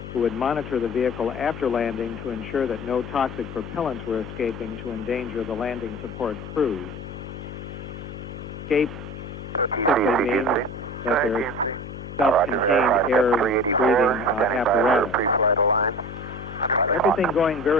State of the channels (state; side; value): noise; left; hum, 10 dB below the sound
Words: who would monitor the vehicle after landing to ensure that no toxic propellants were escaping to endanger the landing support crews. Escape simply means that there's self-contained air-breathing apparatus. Everything going